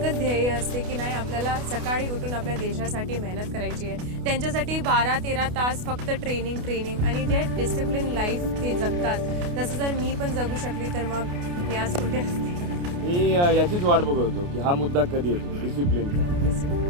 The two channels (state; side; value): late; left; 28 ms